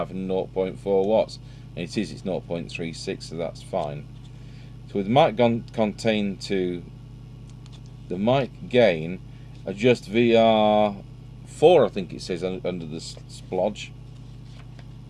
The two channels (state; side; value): identical; both; correlation 1.00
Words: and 0.4 watts, and it is. It's 0.36, so that's fine. So with the mic contained to the mic gain, adjust VR4, I think it says under the splodge.